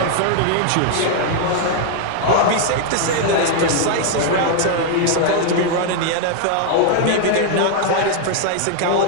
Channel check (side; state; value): both; different; correlation 0.00